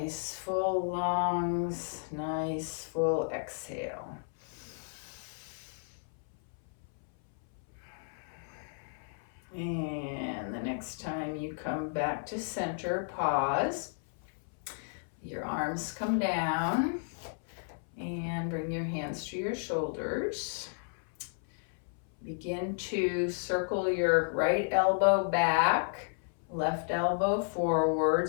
full lungs, nice full exhale. And the next time you come back to center, pause. Your arms come down and bring your hands to your shoulders. Begin to circle your right elbow back, left elbow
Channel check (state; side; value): silent; right; 56 dB below the other